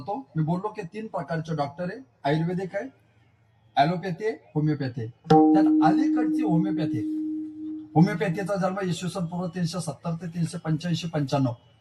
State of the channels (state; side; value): identical; both; correlation 1.00